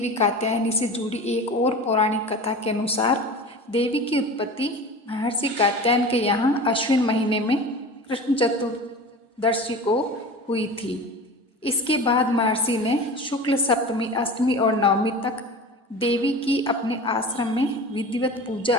कात्यायनी से जुड़ी एक और पौराणिक कथा के अनुसार देवी की उत्पत्ति महर्षि कात्यायन के यहाँ अश्विन महीने में कृष्ण चतुर्दशी को हुई थी। इसके बाद महर्षि ने शुक्ल सप्तमी, अष्टमी और नवमी तक देवी की अपने आश्रम में विधिवत पूजा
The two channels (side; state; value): both; normal; correlation 0.34